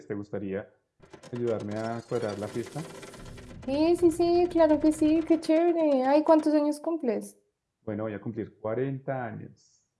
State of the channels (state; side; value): identical; both; correlation 1.00